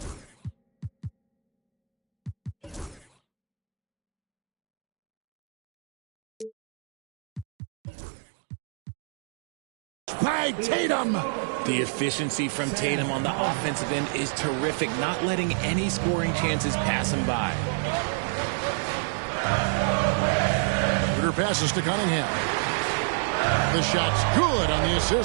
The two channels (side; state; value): left; drops out; at 7.5 s